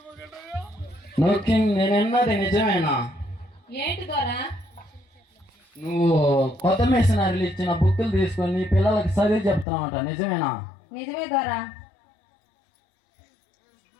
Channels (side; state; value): right; drops out; at 9.7 s